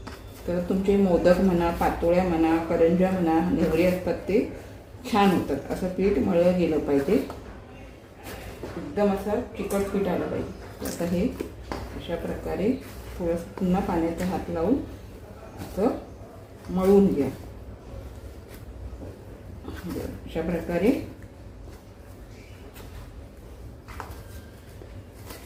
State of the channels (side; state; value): both; identical; correlation 1.00